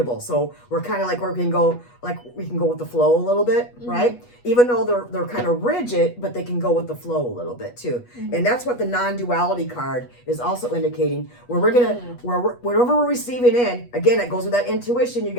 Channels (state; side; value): late; right; 8.3 ms